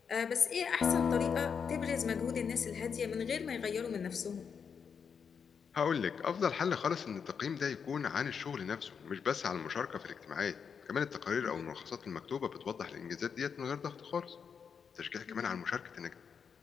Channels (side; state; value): right; quieter; 6.6 dB